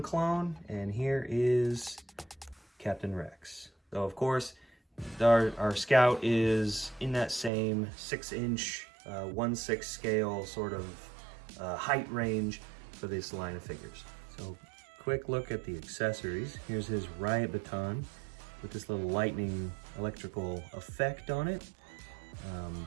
clone, and here is Captain Rex. So of course, our Scout is in that same 6-inch, 1/6 scale sort of height range for this line of figures. So quick look at the accessories. Here's his riot baton with this little lightning electrical effect on it. I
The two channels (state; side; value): drops out; left; at 7.5 s